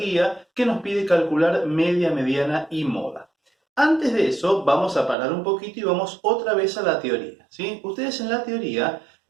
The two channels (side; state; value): left; drops out; at 5.2 s